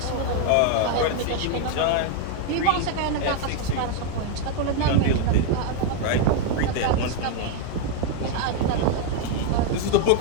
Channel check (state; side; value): different; both; correlation 0.01